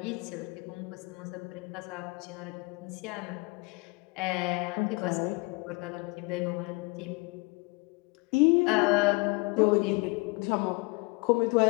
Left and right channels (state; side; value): quieter; right; 27.2 dB